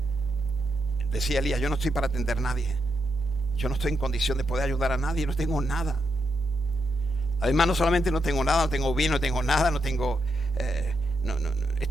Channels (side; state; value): left; noise; hum, 16 dB below the sound